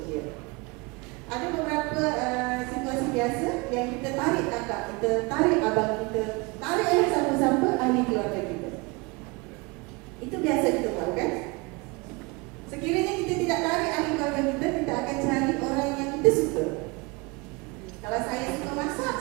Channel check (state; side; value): quieter; left; 26.9 dB